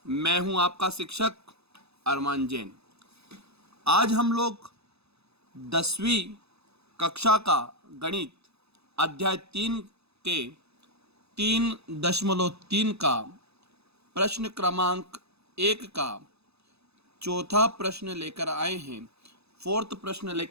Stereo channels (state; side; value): late; left; 0.79 ms